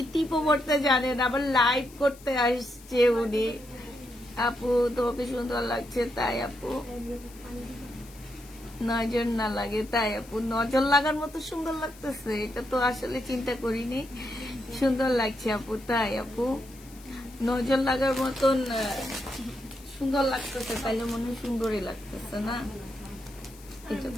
টিপও করতে জানে না, আবার লাইভ করতে আসছে উনি। আপু তোমাকে সুন্দর লাগছে, তাই আপু নজর না লাগে, তাই আপু নজর লাগার মতো সুন্দর লাগতেছে, এটা তো আসলে চিন্তা করিনি, সুন্দর লাগছে আপু, তাই আপু নজর লাগার মতন সুন্দর লাগতেছে, তাইলে মনে হয় সুন্দরই লাগতেছে না, এটা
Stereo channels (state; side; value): noise; left; hiss, 22 dB below the sound